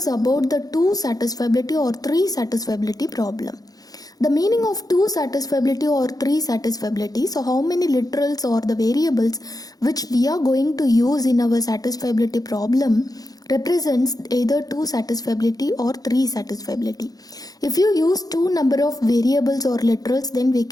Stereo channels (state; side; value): late; right; 0.18 ms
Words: about the two satisfiability or three satisfiability problem. The meaning of two satisfiability or three satisfiability. So how many literals or the variables which we are going to use in our satisfiability problem represents either two satisfiability or three satisfiability. If you use two number of variables or literals, then we